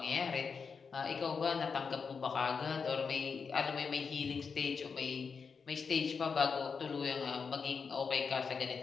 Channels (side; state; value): right; quieter; 5.5 dB